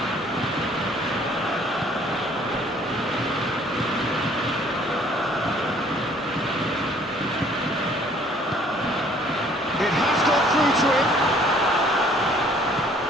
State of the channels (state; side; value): normal; both; correlation 0.58